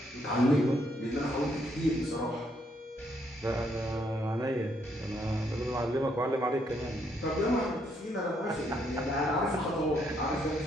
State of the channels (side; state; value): both; normal; correlation 0.73